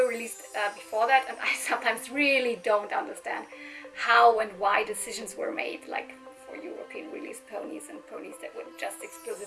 released before that, and I sometimes really don't understand how and why decisions were made, like for European released ponies and ponies that were just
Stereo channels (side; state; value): both; identical; correlation 1.00